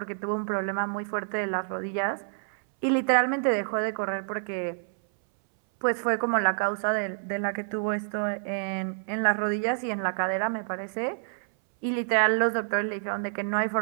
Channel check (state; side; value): silent; left; 59 dB below the other